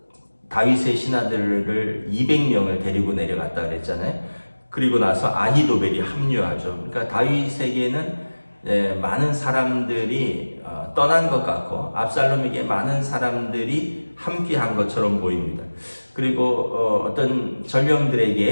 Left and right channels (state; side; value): inverted; both; correlation -1.00